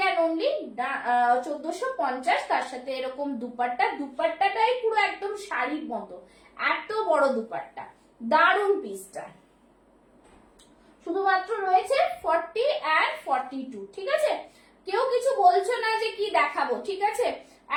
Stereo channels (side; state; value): both; identical; correlation 1.00